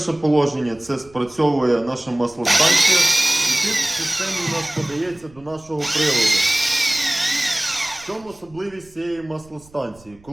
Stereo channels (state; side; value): noise; right; rumble, 26 dB below the sound